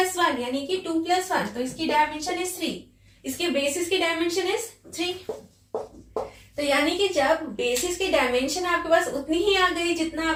यानी कि 2 + 1, तो इसकी डायमेंशन इज 3, इसके बेसिस की डायमेंशन इज 3। तो यानी कि जब बेसिस की डायमेंशन आपके पास उतनी ही आ गई जितना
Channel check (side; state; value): both; identical; correlation 1.00